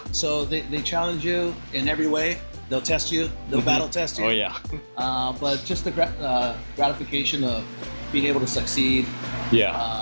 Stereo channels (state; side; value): inverted; both; correlation -1.00